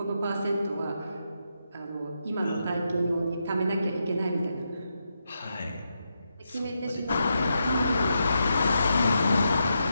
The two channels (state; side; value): inverted; both; correlation -0.84